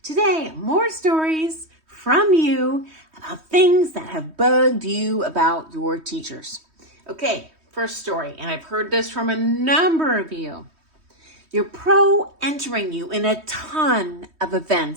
Today, more stories from you about things that have bugged you about your teachers. Okay, first story, and I've heard this from a number of you. Your pro entering you in a ton of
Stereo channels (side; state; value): left; late; 3.2 ms